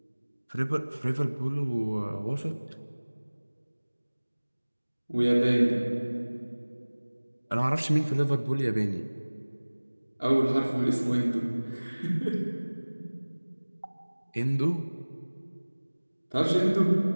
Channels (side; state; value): both; inverted; correlation -1.00